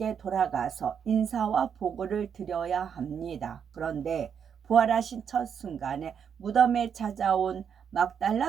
돌아가서 인사와 보고를 드려야 합니다. 그런데 부활하신 첫 순간에 무덤에 찾아온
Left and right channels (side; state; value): left; quieter; 7.5 dB